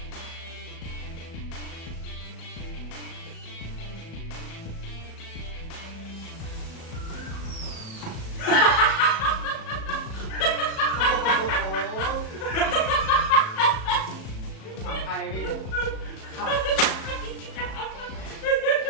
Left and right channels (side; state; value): right; late; 37 ms